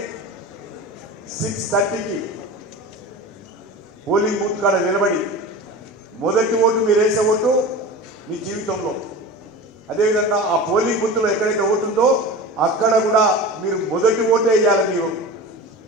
6:30కి పోలింగ్ బూత్ కాడ నిలబడి మొదటి ఓటు మీరు వేసే ఓటు మీ జీవితంలో, అదేవిధంగా ఆ పోలింగ్ బూత్లో ఎక్కడైతే ఓటు ఉందో అక్కడ కూడా మీరు మొదటి ఓటే వేయాలి. మీరు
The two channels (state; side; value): normal; both; correlation 0.32